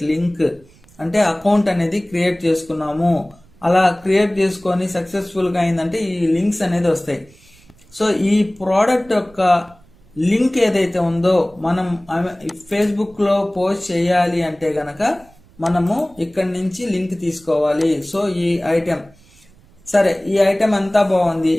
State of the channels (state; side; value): noise; right; rumble, 28 dB below the sound